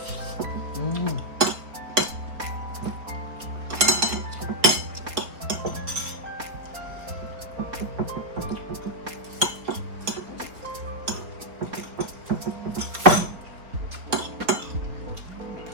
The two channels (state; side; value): late; left; 4.1 ms